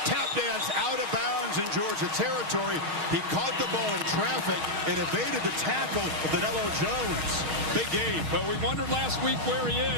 tap dance out of bounds in Georgia territory. He caught the ball in traffic and evaded the tackle of Danilo Jones. Big gain. But we wondered last week where he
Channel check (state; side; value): late; left; 6.4 ms